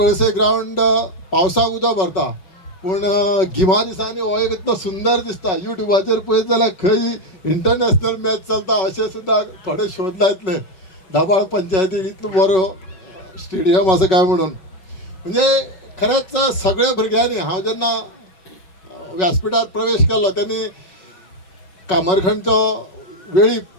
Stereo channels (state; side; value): late; right; 5.3 ms